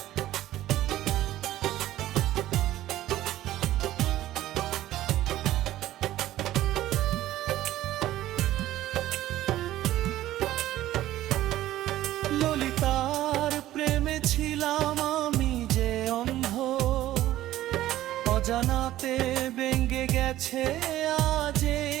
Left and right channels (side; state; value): left; quieter; 14.3 dB